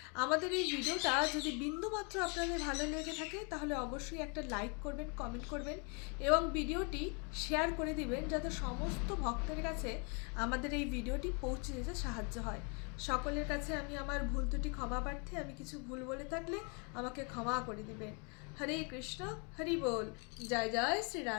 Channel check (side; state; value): right; quieter; 35.3 dB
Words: আমাদের এই ভিডিওটা যদি বিন্দুমাত্র আপনাদের ভালো লেগে থাকে তাহলে অবশ্যই একটা লাইক করবেন, কমেন্ট করবেন এবং ভিডিওটি শেয়ার করে দিবেন, যাতে সমস্ত ভক্তের কাছে আমাদের এই ভিডিওটি পৌঁছে যেতে সাহায্য হয়। সকলের কাছে আমি আমার ভুল ত্রুটি ক্ষমা প্রার্থী। আমি কিছু ভুল বলে থাকলে আমাকে ক্ষমা করে দিবেন। হরে কৃষ্ণ, হরি বল। জয় জয় শ্রী